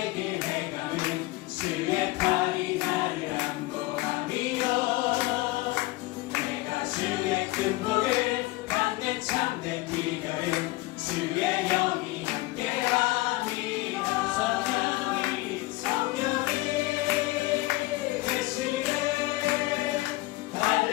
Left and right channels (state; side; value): quieter; right; 20.0 dB